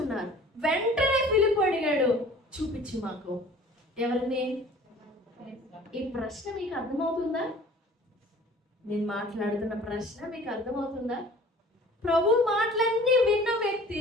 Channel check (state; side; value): normal; both; correlation 0.47